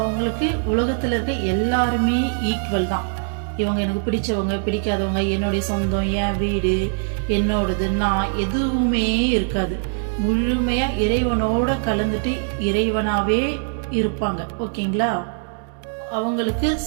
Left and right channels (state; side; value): silent; left; 64 dB below the other